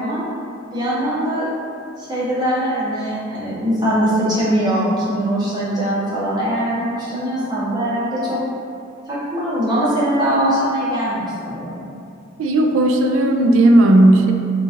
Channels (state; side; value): normal; both; correlation 0.57